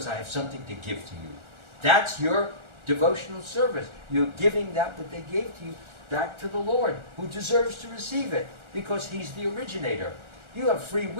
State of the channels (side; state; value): left; late; 1.4 ms